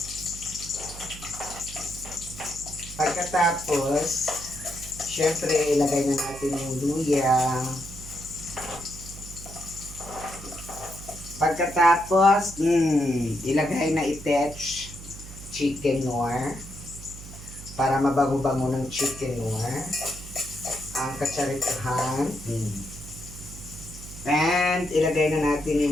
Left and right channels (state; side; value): noise; right; hum, 14 dB below the sound